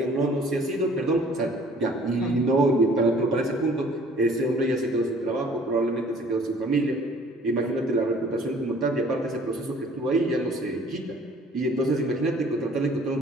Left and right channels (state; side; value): normal; both; correlation 0.54